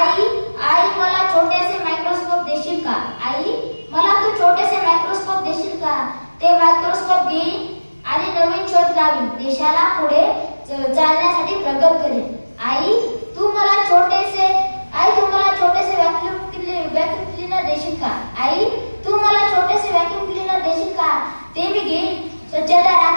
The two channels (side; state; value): both; inverted; correlation -1.00